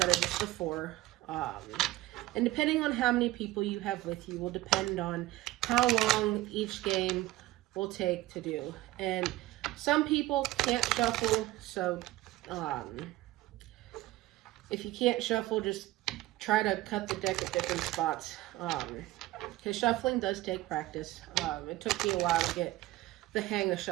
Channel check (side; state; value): left; quieter; 17.2 dB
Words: of just the 4. And depending on how many people you have with you will depend on how long each game will take to do. And some people can't shuffle, so if you can't shuffle, just try to cut the deck at different spots. Because shuffling does take practice. It took me a while to get the hang of